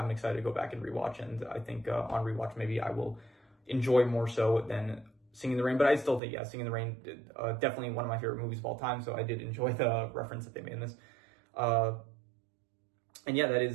excited to go back and rewatch. And I think on rewatch maybe I will enjoy more so than Singing in the Rain. But I still think, yeah, Singing in the Rain, definitely one of my favorite movies of all time. So I did enjoy the reference that they made in this. And yeah, that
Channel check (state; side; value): drops out; left; at 6.2 s